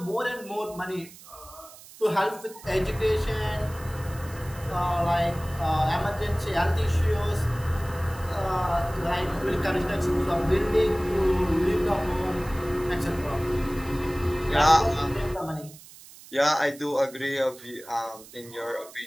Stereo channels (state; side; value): noise; right; hiss, 19 dB below the sound